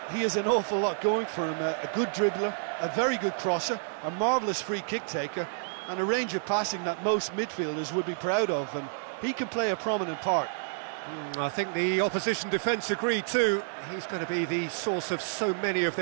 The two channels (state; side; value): silent; left; digital silence